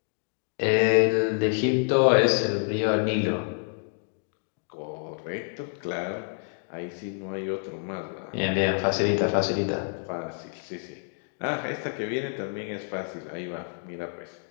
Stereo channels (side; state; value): right; silent; 59 dB below the other